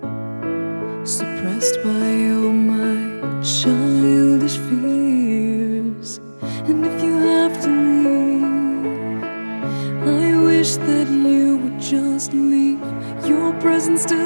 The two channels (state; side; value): inverted; both; correlation -1.00